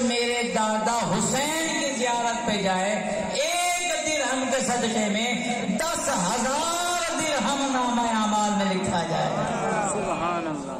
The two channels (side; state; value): both; identical; correlation 1.00